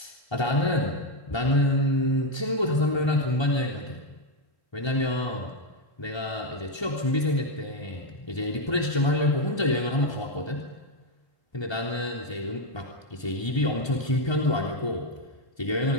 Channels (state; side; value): late; right; 1.3 ms